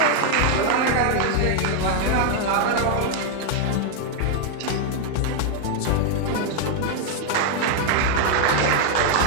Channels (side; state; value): both; different; correlation 0.00